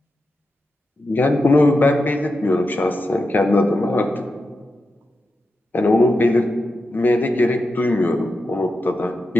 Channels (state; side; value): normal; both; correlation 0.89